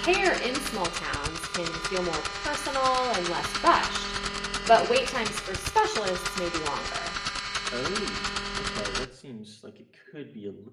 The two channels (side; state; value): both; identical; correlation 1.00